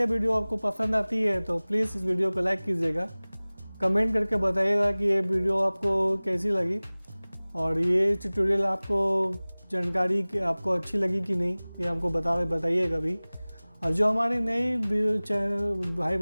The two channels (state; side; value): inverted; both; correlation -1.00